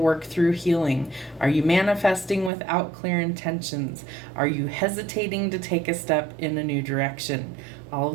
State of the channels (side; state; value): left; drops out; at 2.5 s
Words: through healing? Are you manifesting without clear intentions? Are you hesitating to take a step in a new direction? All